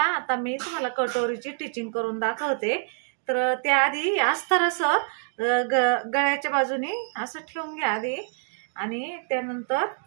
मी तुम्हाला कटोरीची टिचिंग करून दाखवते. तर त्याआधी अस्तर असं गळ्याच्या बाजूने असं ठेवून घ्या आधी, आणि त्यानंतर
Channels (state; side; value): silent; left; 61 dB below the other